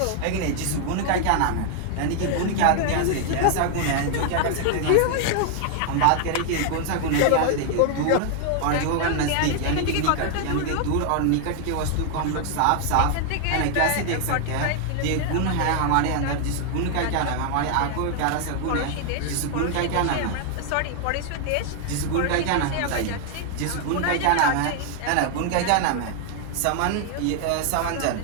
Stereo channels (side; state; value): both; different; correlation 0.00